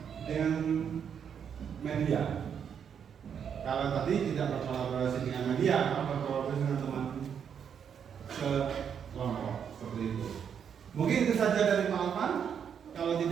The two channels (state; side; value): quieter; left; 7.8 dB